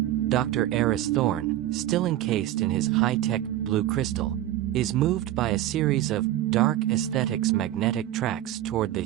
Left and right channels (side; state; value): left; quieter; 13.5 dB